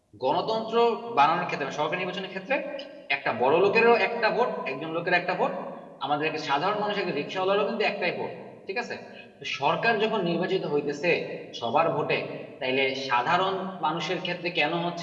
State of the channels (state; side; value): identical; both; correlation 1.00